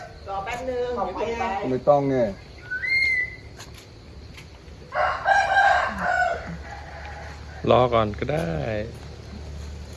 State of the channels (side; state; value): both; identical; correlation 1.00